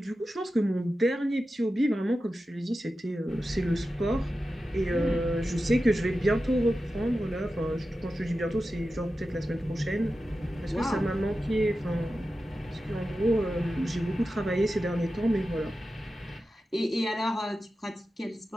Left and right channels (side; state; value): both; normal; correlation 0.92